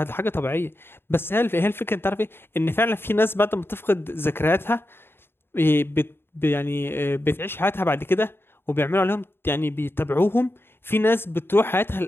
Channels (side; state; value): right; late; 0.11 ms